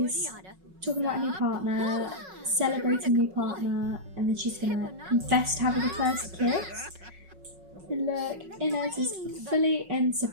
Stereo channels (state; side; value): late; left; 5.4 ms